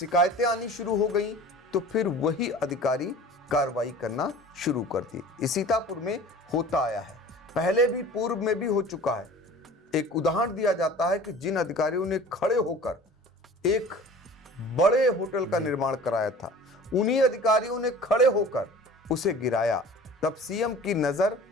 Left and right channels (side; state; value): both; normal; correlation 0.43